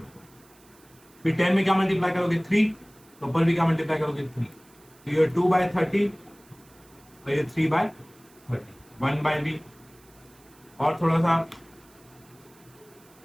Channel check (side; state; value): right; noise; hiss, 28 dB below the sound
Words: फिर 10 में क्या मल्टीप्लाई करोगे 3, तो ऊपर भी क्या मल्टीप्लाई करोगे 3, तो ये 2/30 और ये 3/30, 1/b। और थोड़ा सा